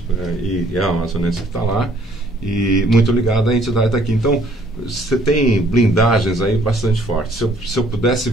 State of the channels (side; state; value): both; normal; correlation 0.62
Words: e é a amazonense que está lá, e muito ligada à entidade daqui. Então, você tem blindagens aí bastante fortes. Se eu pudesse